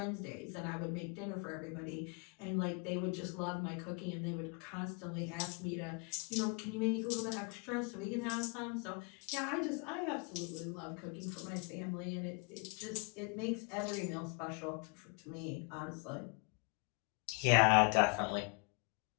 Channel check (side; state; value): right; quieter; 33.3 dB